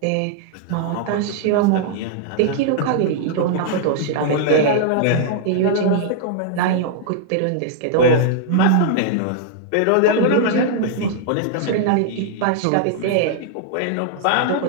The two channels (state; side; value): different; both; correlation 0.00